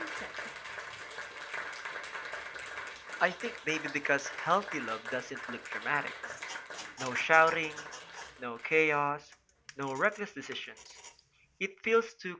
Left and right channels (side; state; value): both; identical; correlation 1.00